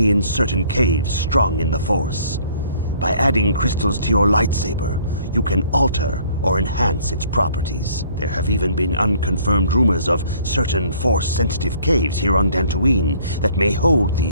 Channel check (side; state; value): both; inverted; correlation -0.58